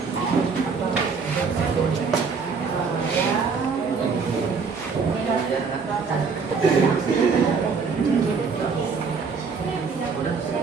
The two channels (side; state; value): left; quieter; 5.2 dB